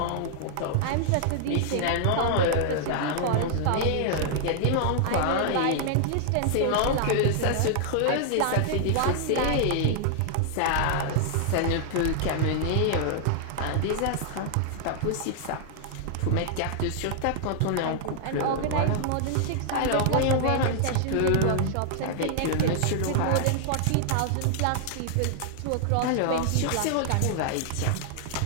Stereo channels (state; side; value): different; both; correlation -0.01